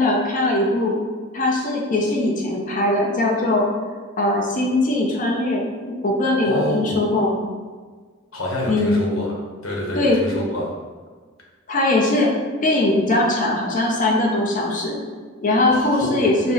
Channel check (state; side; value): normal; both; correlation 0.31